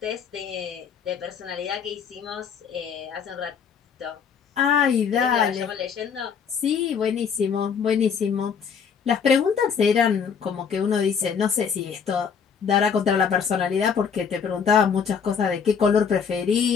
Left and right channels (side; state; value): right; quieter; 6.6 dB